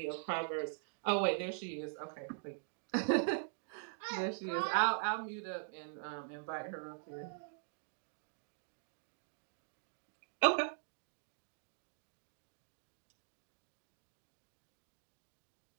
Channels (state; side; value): silent; left; digital silence